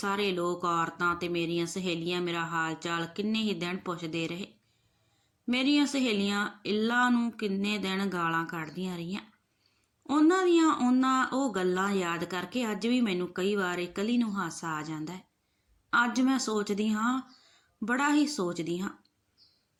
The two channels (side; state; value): both; identical; correlation 1.00